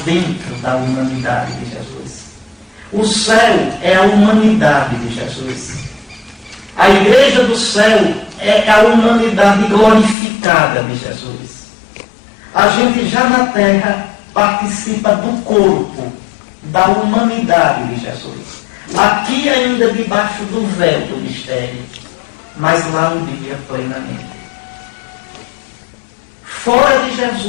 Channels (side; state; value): right; drops out; at 10.2 s